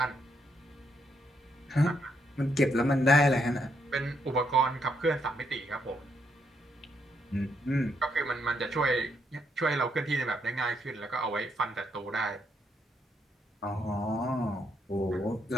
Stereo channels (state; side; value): normal; both; correlation 0.76